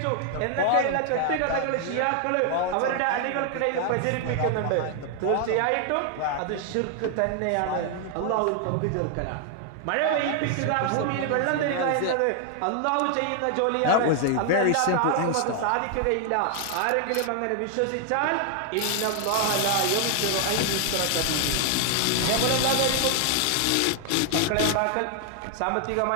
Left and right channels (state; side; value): different; both; correlation 0.00